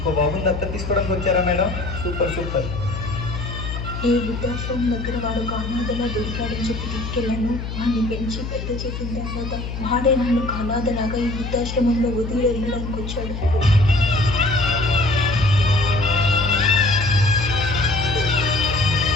బాబుని దత్తత తీసుకోవడానికి వచ్చారా మేడం? సూపర్. ఈ వృద్ధాశ్రమం దగ్గర వాడు ఒక అనాథలా దొరికాడని చెప్పి తీసుకెళ్ళాను. వాడిని పెంచి పెద్ద చేసిన తర్వాత వాడే నన్ను ఒక అనాథలాగా ఈ వృద్ధాశ్రమంలో వదిలి వెళ్ళడానికి వచ్చాడు.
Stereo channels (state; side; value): noise; left; hum, 6 dB below the sound